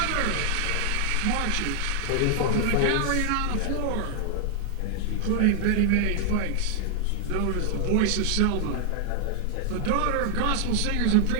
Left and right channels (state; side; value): different; both; correlation 0.00